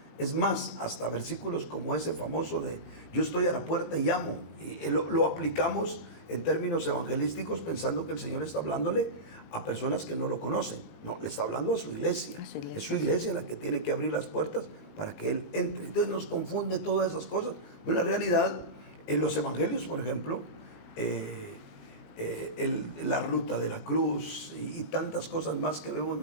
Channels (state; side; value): late; right; 20 ms